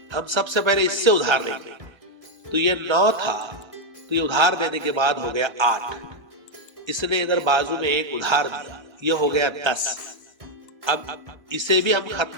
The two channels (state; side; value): late; left; 1.3 ms